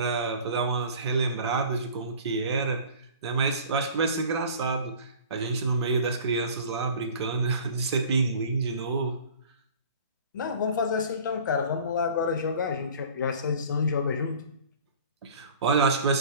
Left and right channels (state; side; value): inverted; both; correlation -0.45